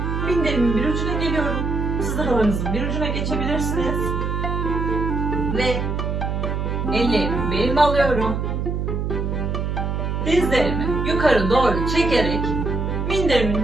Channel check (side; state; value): right; noise; hum, 1 dB below the sound